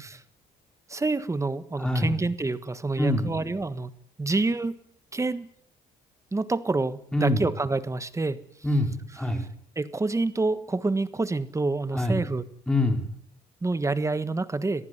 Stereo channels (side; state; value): both; normal; correlation 0.81